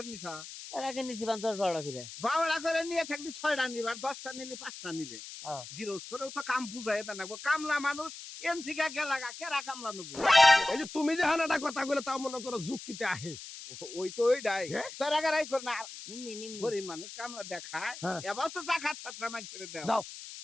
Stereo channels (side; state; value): left; noise; hiss, 12 dB below the sound